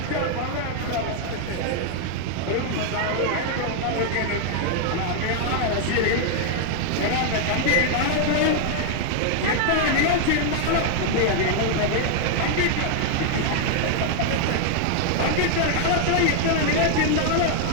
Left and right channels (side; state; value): both; different; correlation 0.00